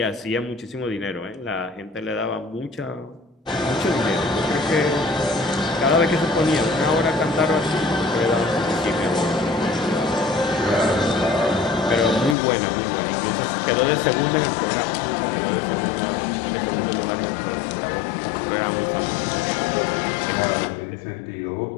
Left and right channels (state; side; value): drops out; right; at 12.4 s